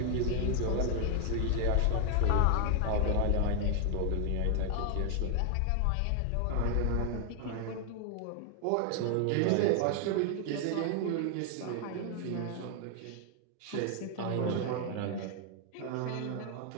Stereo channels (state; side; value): different; both; correlation 0.00